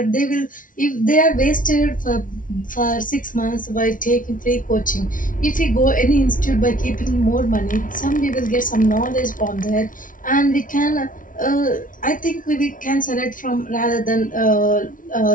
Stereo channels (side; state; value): right; late; 0.38 ms